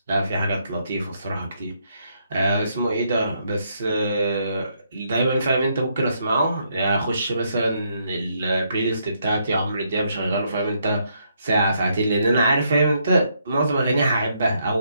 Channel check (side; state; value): both; inverted; correlation -0.75